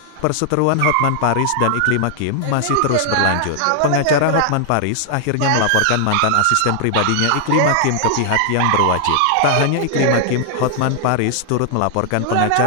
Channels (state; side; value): different; both; correlation -0.01